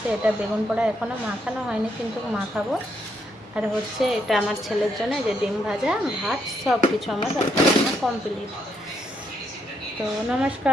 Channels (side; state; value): both; normal; correlation 0.76